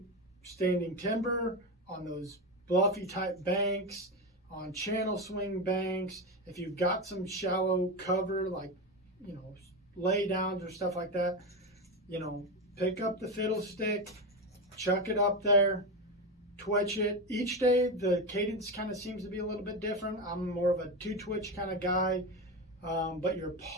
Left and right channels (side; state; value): both; normal; correlation 0.16